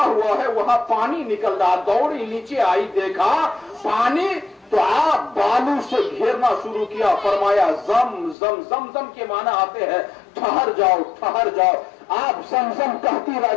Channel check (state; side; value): drops out; right; at 8.3 s